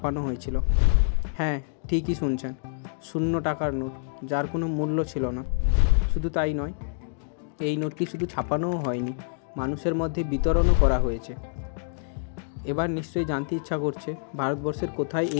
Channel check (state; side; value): silent; right; digital silence